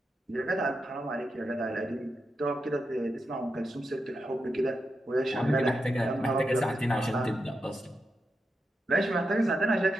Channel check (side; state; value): both; normal; correlation 0.87